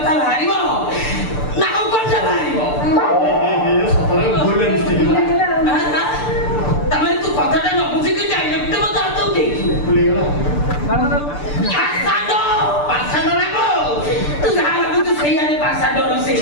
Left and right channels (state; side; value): late; right; 6.8 ms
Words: ବାହାରିବ ନା ଆଉ କଣ ବାହାରିବ ତାମାନେ ତୁ କଥାଟା ନ ବୁଝିକି ଡାଇରେକ୍ଟ ମତେ ହାତ ଉଠେଇଛୁ ତୁ ଯାହା ଭାବୁଛୁ ସେଇଆରେ ପାସାଡର